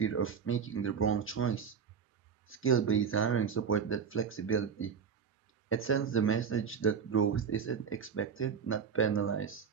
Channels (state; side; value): quieter; left; 6.7 dB